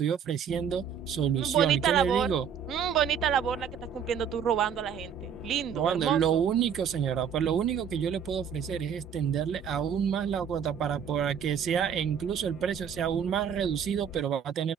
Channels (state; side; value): quieter; left; 7.7 dB